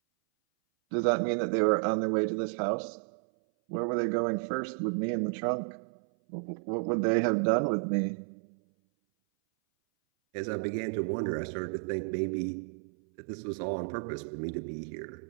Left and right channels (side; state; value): left; silent; 57 dB below the other